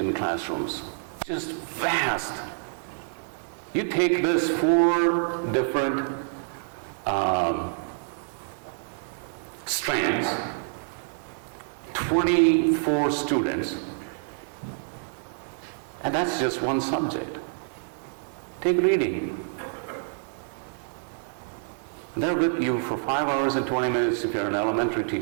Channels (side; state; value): left; silent; 60 dB below the other